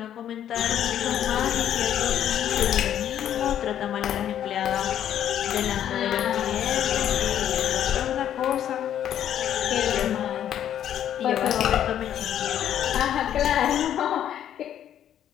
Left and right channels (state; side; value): quieter; right; 10.5 dB